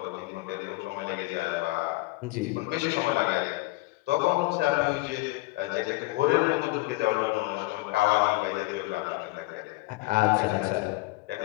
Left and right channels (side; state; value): right; quieter; 21.5 dB